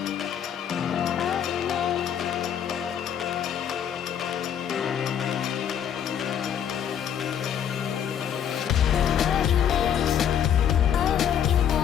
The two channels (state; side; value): quieter; right; 9.0 dB